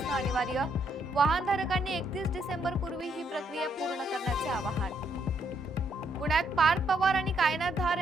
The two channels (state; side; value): normal; both; correlation 0.74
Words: अनिवार्य. वाहनधारकांनी 31 डिसेंबर पूर्वी ही प्रक्रिया पूर्ण करण्याचे आवाहन. पुण्यात पार्थ पवार आणि कायनाथ धार